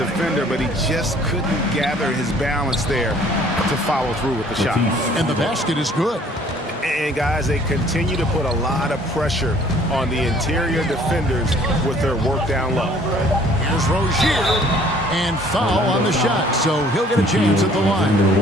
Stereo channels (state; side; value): normal; both; correlation 0.57